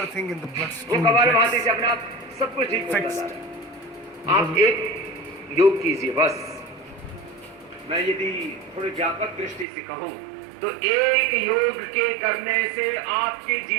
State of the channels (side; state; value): left; drops out; at 9.7 s